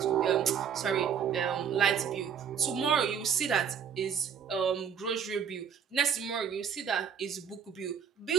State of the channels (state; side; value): quieter; left; 7.6 dB